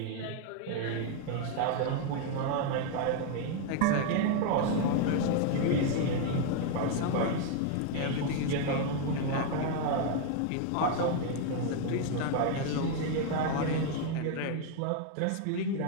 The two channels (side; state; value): both; different; correlation 0.00